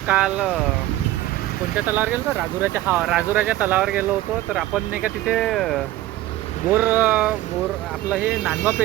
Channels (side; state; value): left; quieter; 15.6 dB